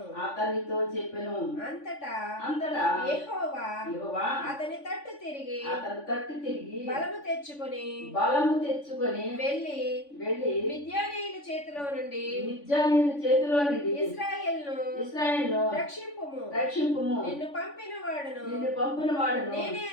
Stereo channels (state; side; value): late; right; 3.5 ms